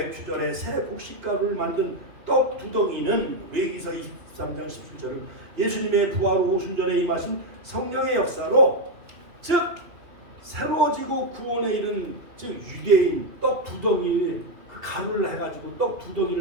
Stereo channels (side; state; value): left; late; 2.8 ms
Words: 새 곡식가루를 만든 떡 두덩이는 레위기서 23장 17절은 예수님의 부활 후 오순절에 임하신 성령의 역사로 즉 그리고 구원에 이른 즉 유대인 떡 두덩이 그 가루를 해가지고 떡